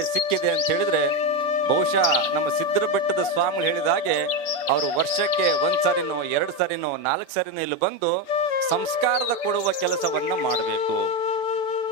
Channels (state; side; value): late; right; 7.0 ms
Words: ಸಿಕ್ಕಿದೆ ಅಂತ ಹೇಳಿದ್ರೆ ಬಹುಶಃ ನಮ್ಮ ಸಿದ್ಧರ ಬೆಟ್ಟದ ಸ್ವಾಮಿಗಳು ಹೇಳಿದ ಹಾಗೆ ಅವರು ವರ್ಷಕ್ಕೆ 1 ಸಾರಿನೋ 2 ಸಾರಿನೋ 4 ಸಾರಿನೋ ಇಲ್ಲಿ ಬಂದು ಸಂಸ್ಕಾರದ ಕೊಡುವ ಕೆಲಸವನ್ನ ಮಾಡಬೇಕು.